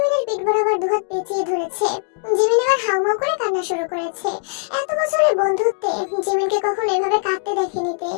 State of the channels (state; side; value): silent; right; digital silence